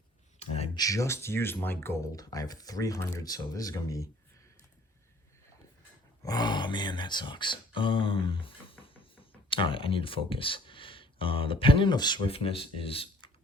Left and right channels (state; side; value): normal; both; correlation 0.55